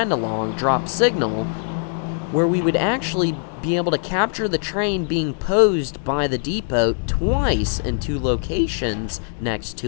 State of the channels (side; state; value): right; silent; 65 dB below the other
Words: along, drop signal, where we would actually be able to capture the train being posed by the depot twice in 2 locations next